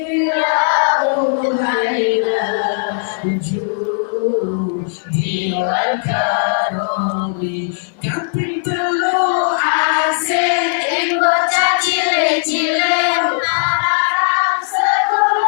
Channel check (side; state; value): right; silent; digital silence